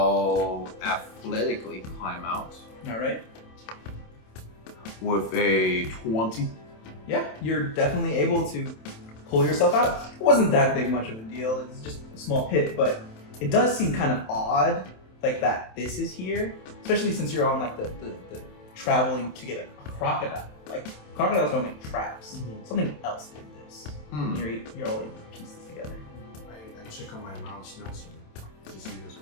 athletically climb out Alright. with a 20. Yeah, you're definitely able to pull yourself out. It wasn't that big much of a deal, it's just a small pit, but it does seem kind of odd, that this is here, especially since you're on the traveling to get a crocodile. Crocodiles don't make traps. Something else did. You're all able to piece this together. I check on my mouse Nelson to see this.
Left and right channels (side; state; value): right; late; 27 ms